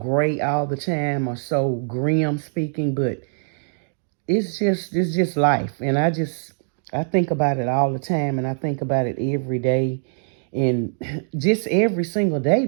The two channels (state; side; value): silent; left; digital silence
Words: all the time or so grim speaking, but it's just life, and I think about it all the time, and I think about it every day, and just every single day